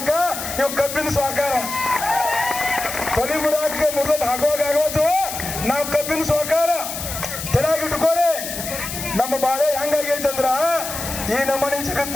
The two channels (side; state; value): left; noise; hiss, 7 dB below the sound